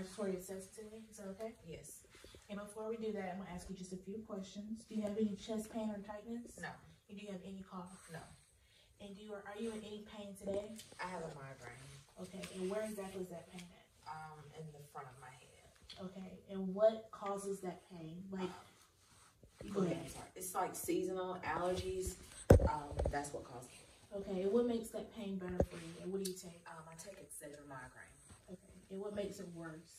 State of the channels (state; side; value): identical; both; correlation 1.00